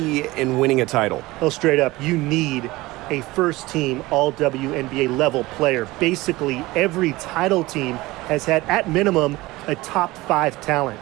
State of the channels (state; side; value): quieter; left; 19.9 dB